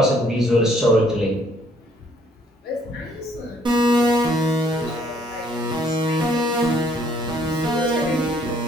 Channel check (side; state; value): both; normal; correlation 0.64